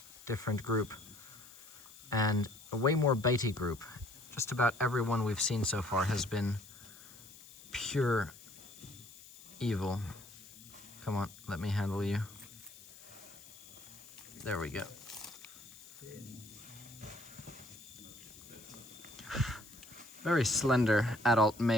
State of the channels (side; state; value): left; noise; hiss, 19 dB below the sound